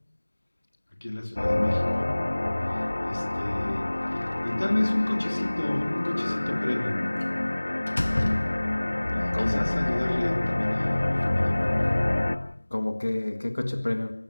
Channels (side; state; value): both; inverted; correlation -1.00